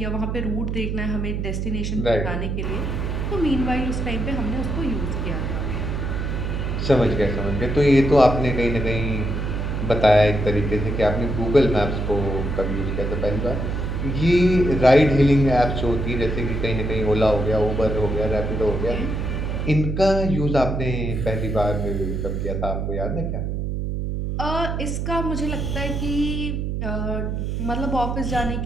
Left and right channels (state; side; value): noise; right; hum, 2 dB below the sound